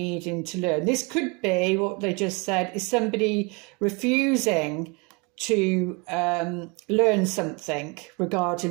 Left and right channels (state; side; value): quieter; left; 30.2 dB